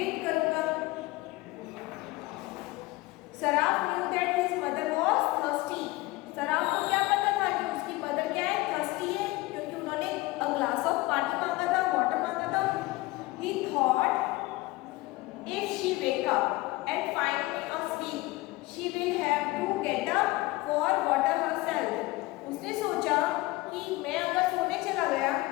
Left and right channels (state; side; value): quieter; right; 20.6 dB